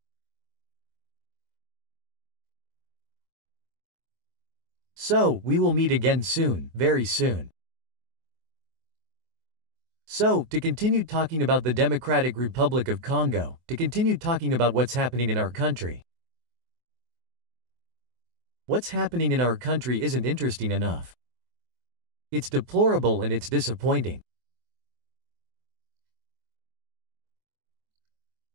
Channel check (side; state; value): left; late; 24 ms